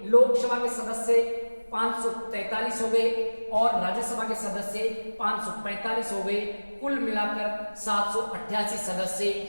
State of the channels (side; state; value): both; inverted; correlation -1.00